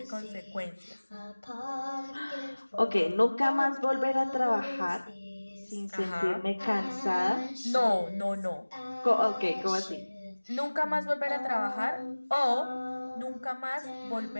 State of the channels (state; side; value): inverted; both; correlation -1.00